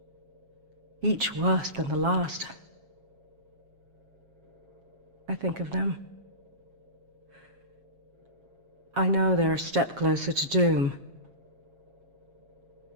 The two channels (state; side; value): late; left; 7.4 ms